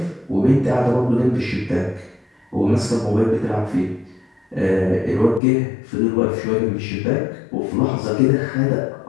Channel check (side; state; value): right; drops out; at 5.4 s